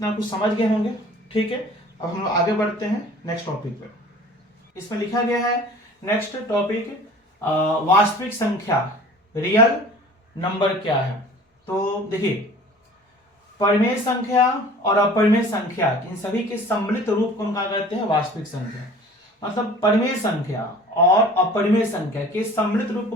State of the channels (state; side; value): normal; both; correlation 0.46